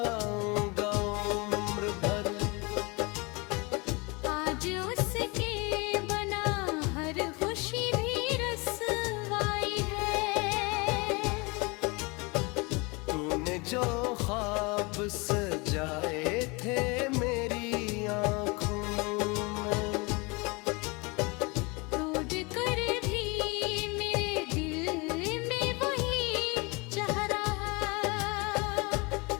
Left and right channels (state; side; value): quieter; right; 27.5 dB